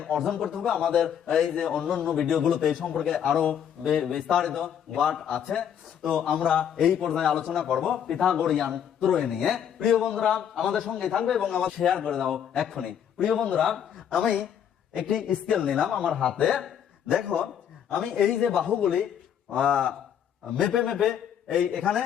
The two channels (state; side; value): quieter; right; 8.9 dB